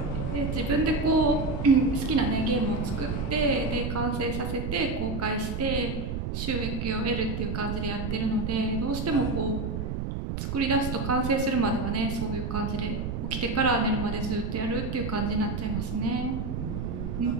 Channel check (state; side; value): noise; right; rumble, 3 dB below the sound